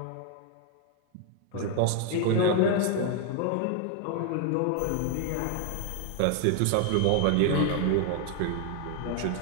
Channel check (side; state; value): both; different; correlation 0.00